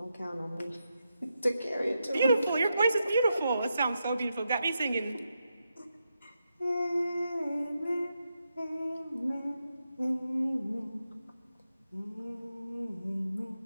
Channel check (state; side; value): inverted; both; correlation -0.86